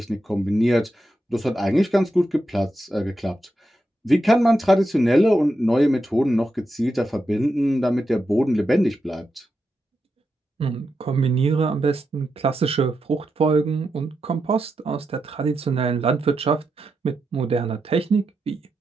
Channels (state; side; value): normal; both; correlation 0.86